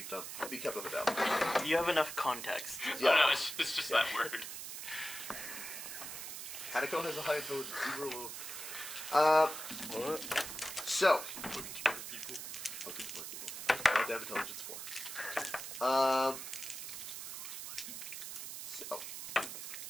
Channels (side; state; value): right; noise; hiss, 7 dB below the sound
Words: be kept on the down. You have enough context. Yeah. No, it's just that word. Henneko has a high intelligence. So. Fucking smart people. Oh, damn intelligence 4. So.